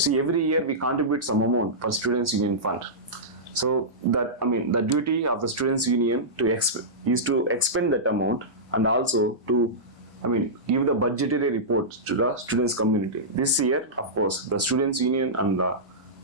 See, every year we contribute some amount for students union fund. So that, the duty of the students union is to expend that amount, and also to give the budgetary report to the students community. This year, of course, the students union and the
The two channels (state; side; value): normal; both; correlation -0.15